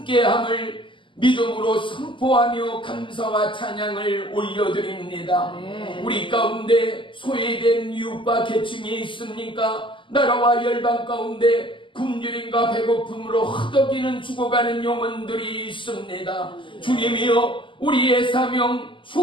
믿음으로 선포하며 감사와 찬양을 올려드립니다. 우리 가운데 소외된 이웃과 계층이 있습니까? 나라와 열방 가운데 굶주림과 배고픔으로 허덕이는 죽어가는 영혼들이 있습니다. 주님이여, 우리의 사명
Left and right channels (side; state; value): right; late; 0.25 ms